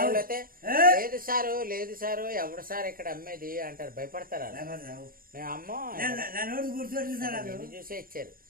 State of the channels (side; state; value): left; late; 0.41 ms